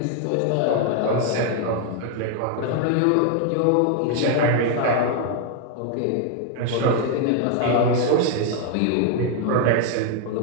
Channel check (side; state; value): both; different; correlation 0.00